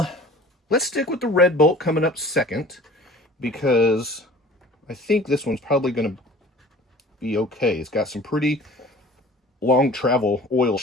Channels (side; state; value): both; normal; correlation 0.46